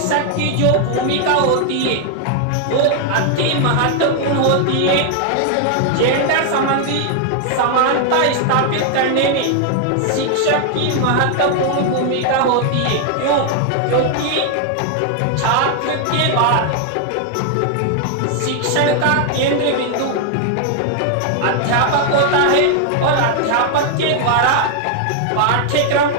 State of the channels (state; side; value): different; both; correlation 0.00